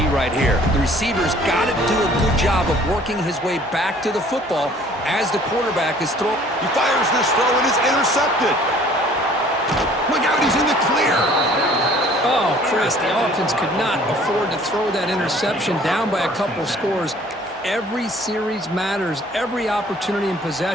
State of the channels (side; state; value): both; normal; correlation 0.54